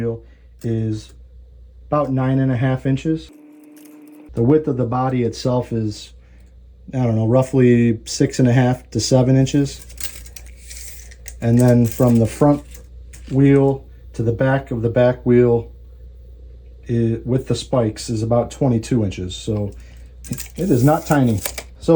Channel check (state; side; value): identical; both; correlation 1.00